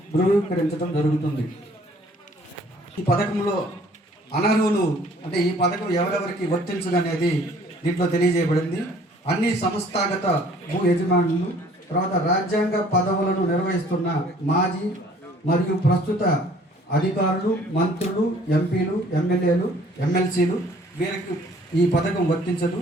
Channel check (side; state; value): both; normal; correlation 0.56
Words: ధృవీకరించడం జరుగుతుంది. ఈ పథకంలో అనర్హులు అంటే ఈ పథకం ఎవరెవరికి వర్తించదనేది దీంట్లో తెలియజేయబడింది. అన్ని సంస్థాగత భూ యజమానులు, తర్వాత రాజ్యాంగ పదవులను నిర్వహిస్తున్న మాజీ మరియు ప్రస్తుత అధికారులు, మంత్రులు, ఎంపీలు, ఎమ్మెల్యేలు, ఎమ్మెల్సీలు వీరికి ఈ పథకం వర్తించదు.